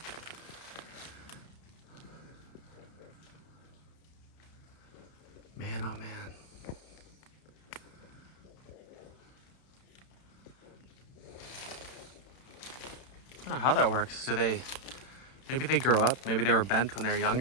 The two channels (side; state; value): right; late; 31 ms